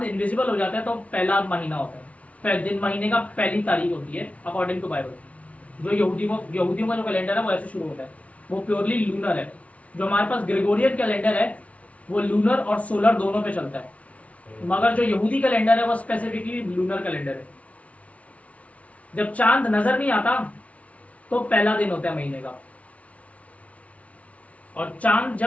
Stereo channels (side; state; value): right; late; 0.066 ms